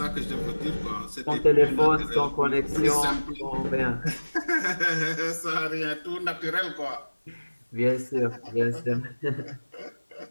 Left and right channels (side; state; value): both; inverted; correlation -1.00